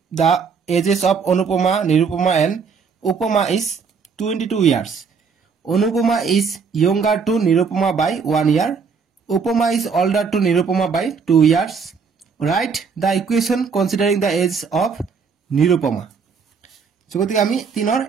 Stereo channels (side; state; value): left; quieter; 5.7 dB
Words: the ages of Anupama Nirupama and Upama is 22 years Anupama is younger to Nirupama by 1 year Upama is older to Nirupama by 2 years write the equation considering the age of Nirupama so গতিকে আমি 3 ৰ